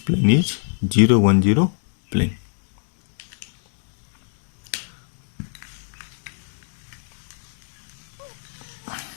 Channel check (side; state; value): right; silent; digital silence